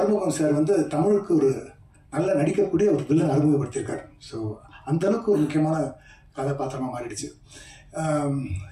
சார் வந்து தமிழுக்கு ஒரு நல்ல நடிக்கக்கூடிய ஒரு வில்லன் அறிமுகப்படுத்தியிருக்காரு. ஸோ அந்த அளவுக்கு ஒரு முக்கியமான கதாபாத்திரமாக மாறிடுச்சு.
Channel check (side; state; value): both; identical; correlation 1.00